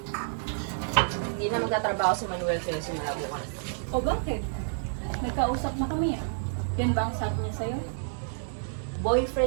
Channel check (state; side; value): silent; left; digital silence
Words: Hindi na magtatrabaho si Manuel kaya simula bukas. O bakit? Nagkausap na kami ah. Yan ba ang sabi niya sa'yo?